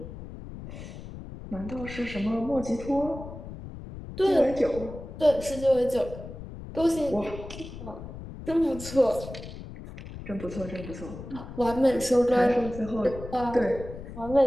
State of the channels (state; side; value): noise; left; rumble, 12 dB below the sound